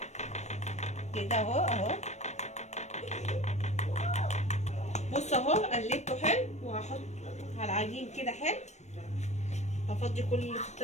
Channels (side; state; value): right; late; 0.33 ms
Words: كده اهو. بص اهو قلبته حلو، وهحط على العجين كده حلو. هفضي كل اللي في